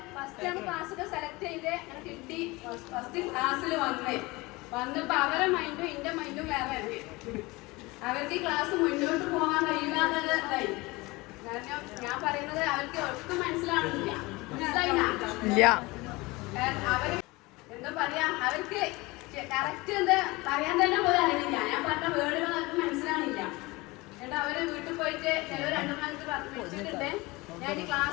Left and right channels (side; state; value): right; quieter; 22.8 dB